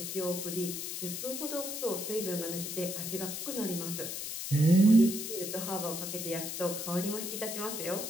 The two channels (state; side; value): noise; left; hiss, 5 dB below the sound